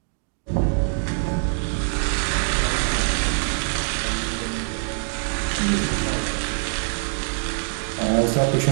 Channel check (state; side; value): silent; left; 63 dB below the other